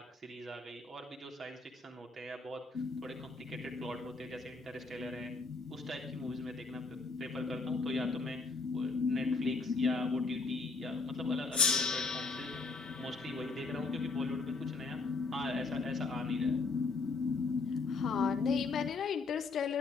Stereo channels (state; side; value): quieter; right; 4.0 dB